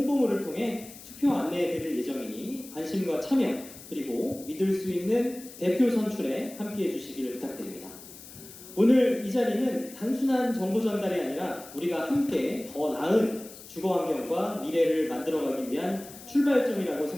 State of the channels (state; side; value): noise; left; hiss, 17 dB below the sound